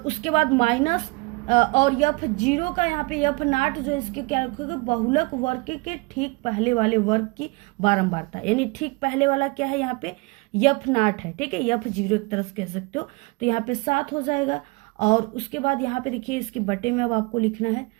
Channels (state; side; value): quieter; left; 26.9 dB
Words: बाद माइनस और F0 का यहाँ पे F0 जो इसके क्या रखोगे, बहुलक वर्ग के ठीक पहले वाले वर्ग की बारंबारता, यानी ठीक पहले वाला क्या है, यहाँ पे F0 है, ठीक है, F0 एक तरह से कह सकते हो। तो यहाँ पे 7 हो जाएगा। और उसके बाद यहाँ पे देखिए इसके बटे में अब आपको लिखना है,